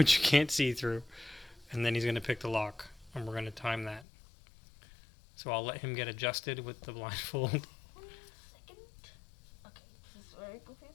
you can't see through, and then he's going to pick the lock, and we're going to time that. So I'll let him get adjusted with the blindfold. 1 second. Okay, this is very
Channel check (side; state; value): right; drops out; at 4.0 s